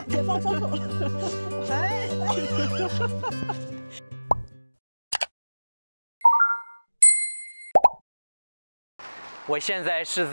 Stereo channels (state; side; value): inverted; both; correlation -1.00